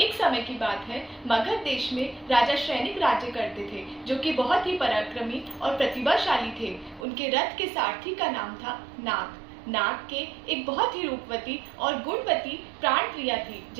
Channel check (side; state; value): left; drops out; at 7.1 s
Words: समय की बात है, मगध देश में राजा श्रेनिक राज्य करते थे, जो कि बहुत ही पराक्रमी और प्रतिभाशाली थे। उनके रथ के सारथी का नाम था नाग। नाग के एक बहुत ही रूपवती और गुणवती प्राण प्रिया थी,